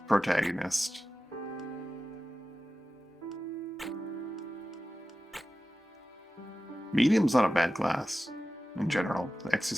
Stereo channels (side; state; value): both; normal; correlation 0.94